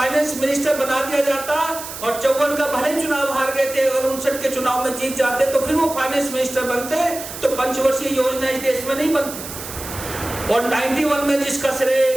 मिनिस्टर बना दिया जाता और 54 का भले चुनाव हार गए थे, अगर 59 के चुनाव में जीत जाते तो फिर वो फाइनेंस मिनिस्टर बनते, तो पंचवर्षीय योजना इस देश में नहीं बनती। और 91 में जिसका श्रेय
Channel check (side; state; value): right; noise; hiss, 10 dB below the sound